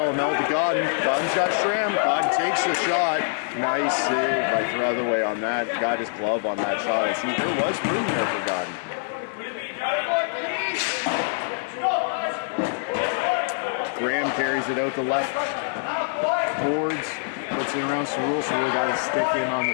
to Godden. Godden's got Schramm. Godden takes the shot. Nice save by Throtherway on that. Got his glove on that shot. I see there was room there for Godden. Graham carries it out the left boards. Puts it around Cerul. Cerul got his stick in on the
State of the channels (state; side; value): silent; right; 62 dB below the other